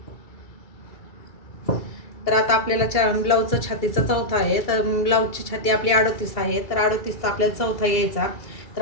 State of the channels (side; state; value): right; late; 2.3 ms